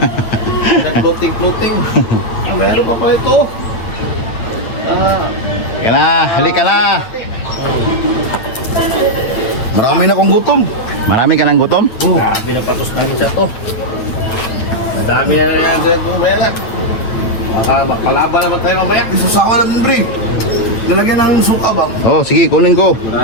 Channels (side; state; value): right; late; 9.2 ms